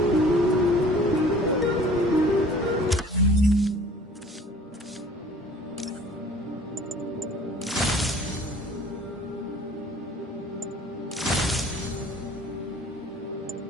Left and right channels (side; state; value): both; normal; correlation 0.50